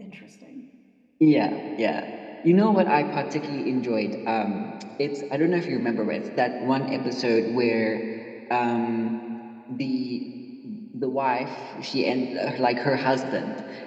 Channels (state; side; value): identical; both; correlation 1.00